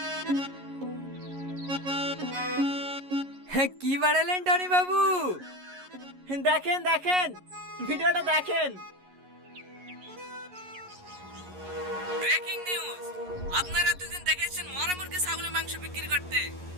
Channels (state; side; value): late; left; 11 ms